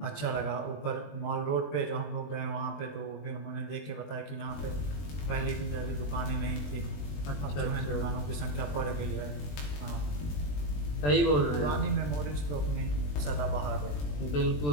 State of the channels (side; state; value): right; late; 20 ms